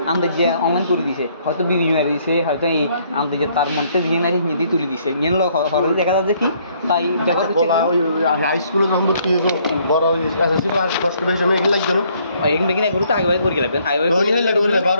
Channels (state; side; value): inverted; both; correlation -0.66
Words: আমাদের যে অনলাইন করে দিছে হয়তো বিভিন্ন মারি দিছে হয়তো এই আমাদের যে তার মধ্যে দিয়ে নাই হিন্দি তুলে দিছে ইয়ে হরে দেখা যাচ্ছে কি তাই ব্যবহার হাই স্কুলে যখন ভর্তি হয়েছে বড় এসএসসি পাস কষ্ট বেশি সময় এগুলো লাগতো না এখানে বেকিন এগুলো তো আগে করে লাগবেন আগে